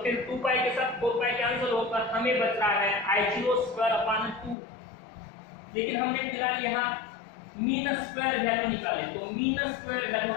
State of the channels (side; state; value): right; drops out; at 4.5 s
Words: फिर 2 पाई के साथ 4 पाई कैंसिल होकर हमें बच रहा है I0 स्क्वायर अपॉन 2। लेकिन हमने फिलहाल यहाँ मीन स्क्वायर वैल्यू निकाले, तो मीन स्क्वायर वैल्यू